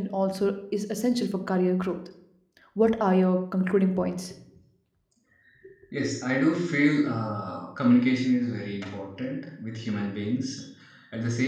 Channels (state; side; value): identical; both; correlation 1.00